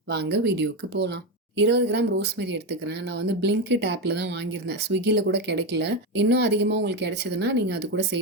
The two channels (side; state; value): both; normal; correlation 0.12